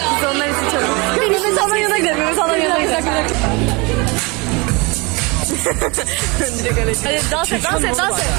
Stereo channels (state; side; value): quieter; left; 27.3 dB